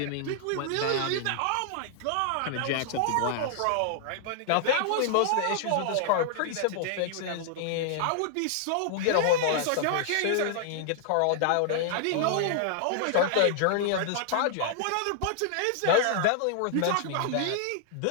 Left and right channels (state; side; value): different; both; correlation -0.01